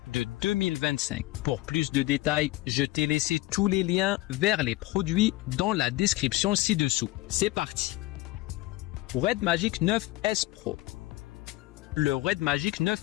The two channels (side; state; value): right; quieter; 18.3 dB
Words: de 2025. Pour plus de détails, je t'ai laissé tous les liens vers les produits dans la description ci-dessous. C'est parti! Red Magic 9S Pro. Le Red Magic